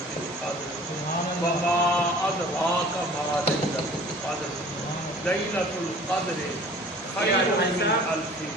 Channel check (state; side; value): normal; both; correlation 0.48